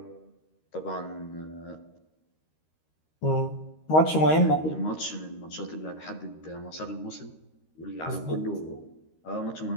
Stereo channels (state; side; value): late; right; 13 ms